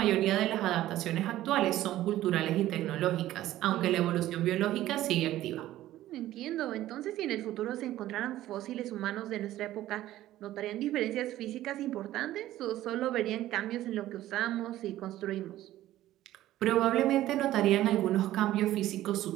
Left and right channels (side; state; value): left; quieter; 14.4 dB